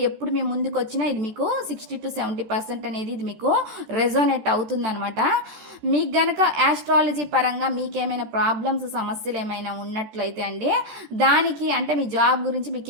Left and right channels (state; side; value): late; left; 14 ms